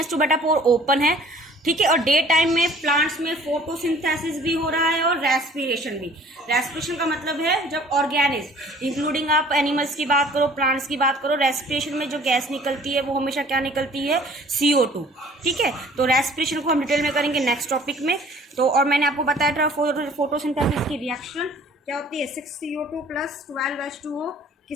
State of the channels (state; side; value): normal; both; correlation 0.52